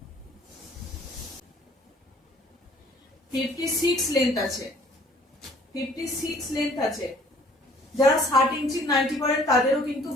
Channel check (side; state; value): both; normal; correlation 0.55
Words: 56 লেন্থ আছে, 56 লেন্থ আছে। যারা 60 ইঞ্চি নাইটি পরেন তাদেরও কিন্তু